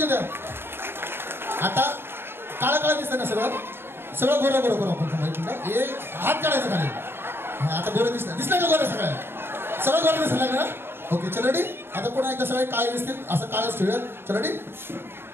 होत्या आता काळा दिसतं ना सगळं गोरं आपण माहिती एक हात काढायचं खाली आता गोरं दिसलं का गोरं सगळं गोरं दिसलं लागलं ना ओके चल रेडी आता पुन्हा एकदा सगळे काळे दिसतील असं काळच ठेवूया चल रेडी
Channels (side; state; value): left; late; 0.11 ms